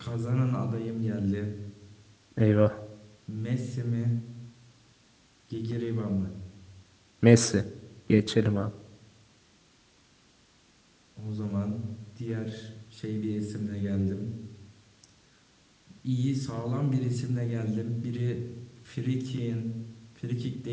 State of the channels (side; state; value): both; identical; correlation 1.00